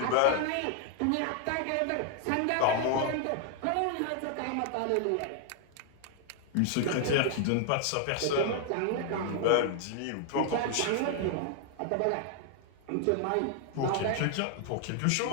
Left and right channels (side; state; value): both; different; correlation 0.00